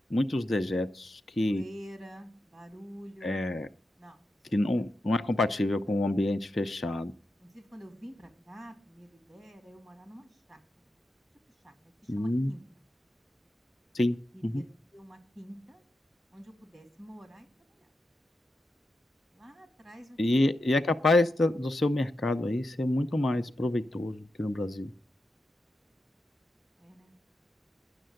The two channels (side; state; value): both; normal; correlation 0.88